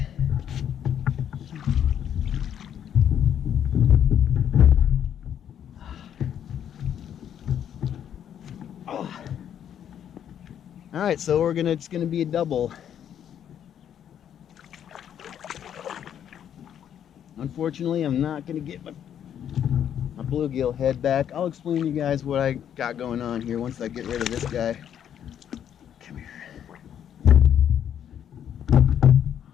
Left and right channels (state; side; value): quieter; right; 9.5 dB